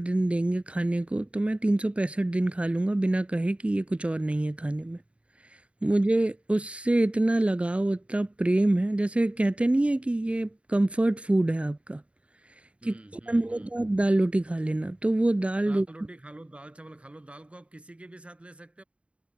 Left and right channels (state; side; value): late; left; 0.061 ms